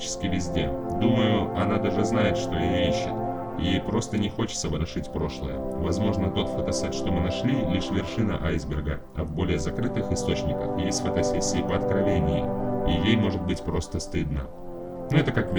везде. Думаю, она даже знает, что ее ищет. Ей просто не хочется ворошить прошлое. Возможно, тот фотосет, что мы нашли, лишь вершина айсберга, а в более закрытых источниках есть фотосессии по откровении, и ей может быть просто стыдно. Но это как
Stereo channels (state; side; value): identical; both; correlation 1.00